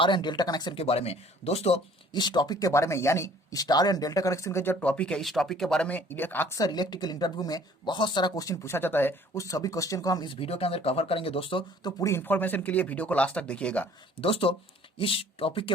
एंड डेल्टा कनेक्शन के बारे में। दोस्तों इस टॉपिक के बारे में यानी स्टार एंड डेल्टा कनेक्शन का जो टॉपिक है, इस टॉपिक के बारे में अक्सर इलेक्ट्रिकल इंटरव्यू में बहुत सारा क्वेश्चन पूछा जाता है। उस सभी क्वेश्चन को हम इस वीडियो के अंदर कवर करेंगे दोस्तों। तो पूरी इन्फॉर्मेशन के लिए वीडियो को लास्ट तक देखिएगा। दोस्तों इस टॉपिक के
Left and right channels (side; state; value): both; normal; correlation 0.54